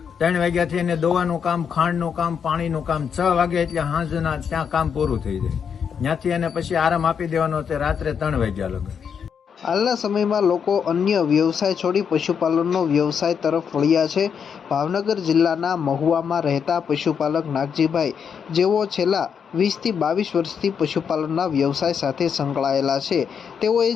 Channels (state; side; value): quieter; right; 7.1 dB